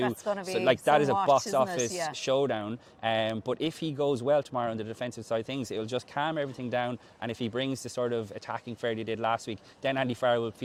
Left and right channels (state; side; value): identical; both; correlation 1.00